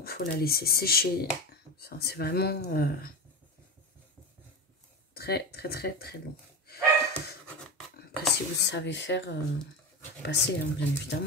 Il faut la laisser sécher. Enfin, c'est vraiment très long. Après, si vous savez faire, passer, hein, bien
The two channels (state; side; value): normal; both; correlation 0.22